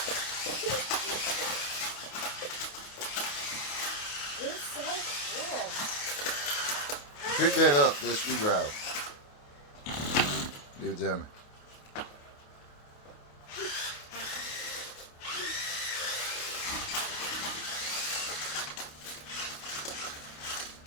It's so cool. Pick that up, that screwdriver. Give it to me.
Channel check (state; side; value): late; right; 28 ms